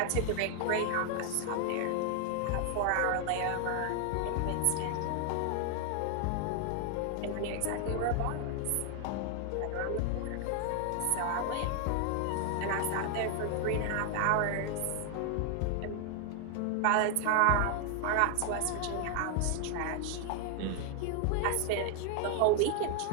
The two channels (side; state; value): both; different; correlation 0.00